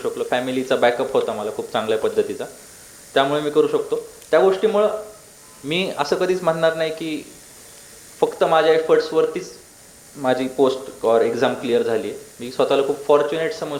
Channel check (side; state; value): both; identical; correlation 1.00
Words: फॅमिलीचा बॅकअप होता मला खूप चांगल्या पद्धतीचा, त्यामुळे मी करू शकतो. त्या गोष्टीमुळं मी असं कधीच म्हणणार नाही की फक्त माझ्या एफर्ट्सवरतीच माझी पोस्ट और एक्झाम क्लिअर झाली आहे. मी स्वतःला खूप फॉर्च्युनेट